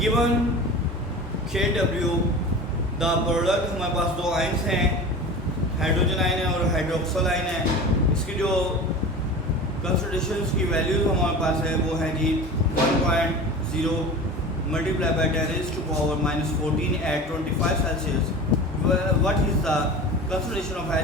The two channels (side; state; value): both; normal; correlation 0.34